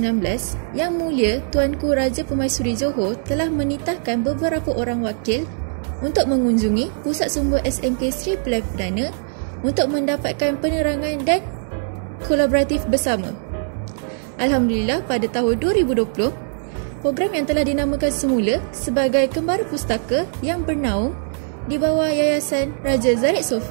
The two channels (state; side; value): silent; left; digital silence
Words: Yang Mulia Tuanku Raja Permaisuri Johor telah menitahkan beberapa orang wakil untuk mengunjungi Pusat Sumber SMK Sri Pilihan Perdana untuk mendapatkan penerangan dan kolaboratif bersama. Alhamdulillah, pada tahun 2020, program yang telah dinamakan semula sebagai Kembara Pustaka yang bernaung di bawah Yayasan Raja Zarek